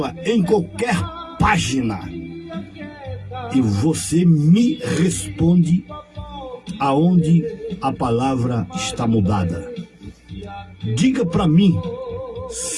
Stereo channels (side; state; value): both; identical; correlation 1.00